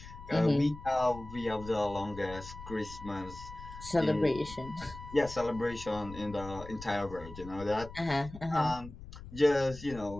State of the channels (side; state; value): left; noise; rumble, 14 dB below the sound